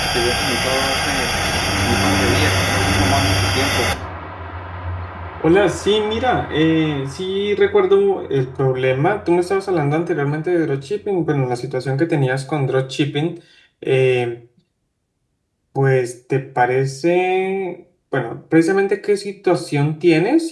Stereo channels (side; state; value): both; identical; correlation 1.00